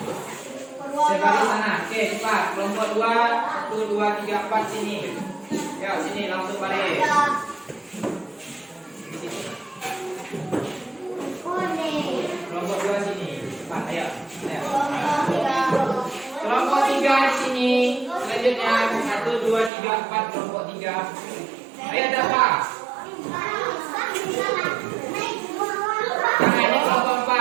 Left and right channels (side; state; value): left; drops out; at 19.7 s